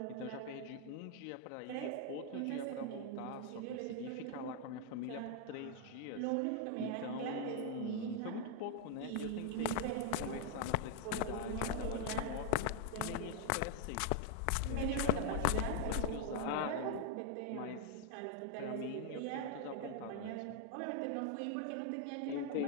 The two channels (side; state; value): both; different; correlation 0.00